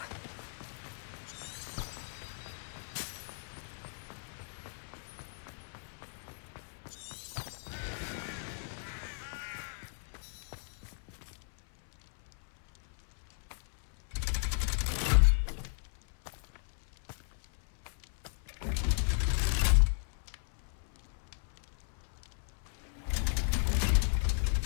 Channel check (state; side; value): silent; right; 54 dB below the other